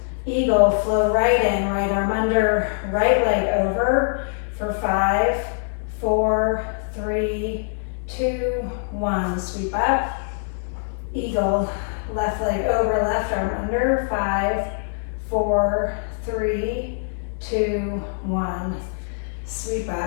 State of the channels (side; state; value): right; silent; digital silence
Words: Eagle, flow right in, right arm under, right leg over for 5, 4, 3, 2, 1. Sweep up. Eagle, left leg over, left arm under, 5, 4, 3, 2, 1. Sweep